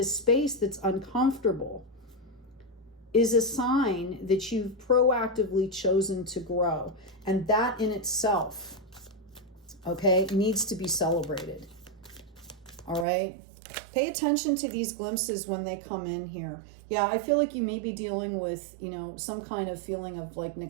space that's uncomfortable is a sign that you've proactively chosen to grow. And that in itself, okay, needs to be celebrated. All right? Pay attention to these glimpses when they come in here. Yeah, I feel like you may be dealing with, some kind of feeling of like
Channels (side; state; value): left; drops out; at 13.1 s